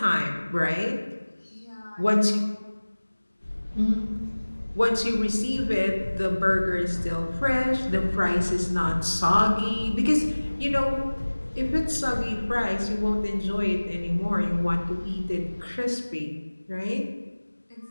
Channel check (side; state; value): both; inverted; correlation -1.00